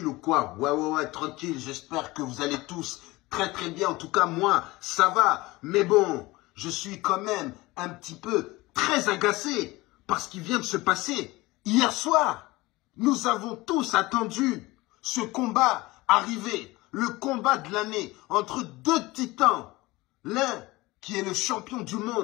ou quoi? Ouais, tranquille. J'espère que vous allez tous très très bien. En tout cas, moi, ça va. Mais bon, je suis quand même un petit peu très agacé par ce qui vient de se passer hier soir. Nous avons tous attendu ce combat arriver. Le combat de l'année entre deux titans. L'un qui est le champion du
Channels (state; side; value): quieter; right; 20.8 dB